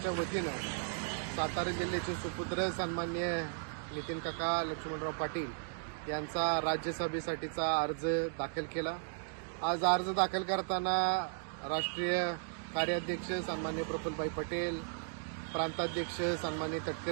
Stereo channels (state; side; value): silent; left; digital silence